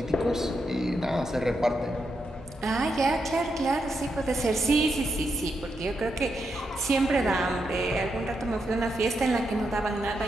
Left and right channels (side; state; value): both; normal; correlation 0.83